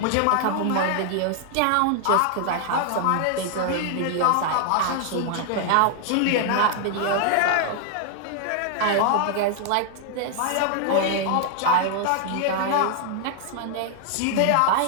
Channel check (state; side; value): different; both; correlation 0.00